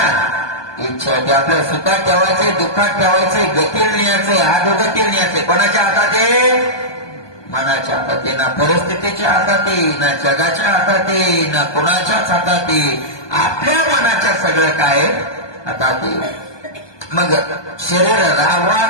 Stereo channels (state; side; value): late; right; 1.2 ms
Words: इच्छा ते आपल्या सुखात ठेवायचे, दुःखात ठेवायचे, गतीला न्यायचे, अधोगतीला न्यायचे. कोणाच्या हातात आहे? मनाच्या हातात आहे. ना परिस्थितीच्या हातात आहे, ना जगाच्या हातात आहे, ना कोणाच्याच हातात आहे. आपल्या मनाच्या सगळं काय हातात आहे. मग शरीर राहावा